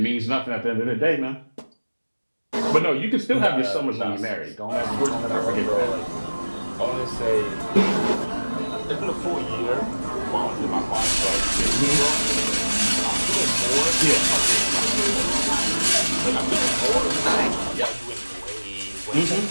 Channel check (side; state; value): both; inverted; correlation -1.00